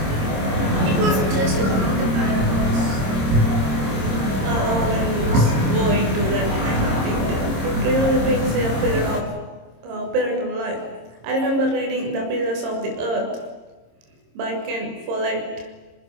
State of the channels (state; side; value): late; left; 26 ms